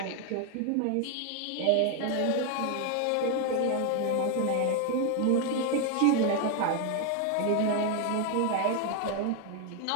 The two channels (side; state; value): both; different; correlation 0.01